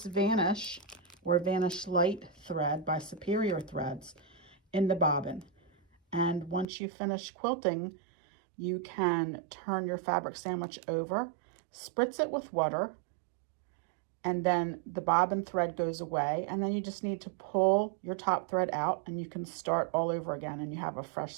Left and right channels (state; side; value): drops out; left; at 6.7 s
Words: Vanish or Vanish Lite thread by Superior Threads in the bobbin. And once you finish quilting, you can turn your fabric sandwich over, spritz it with water, and then the bobbin thread goes away, and then you just need to pull your top thread out and you can start all over again and you have a fresh